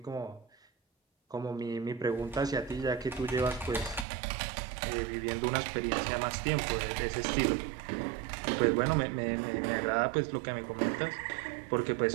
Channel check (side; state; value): left; drops out; at 4.0 s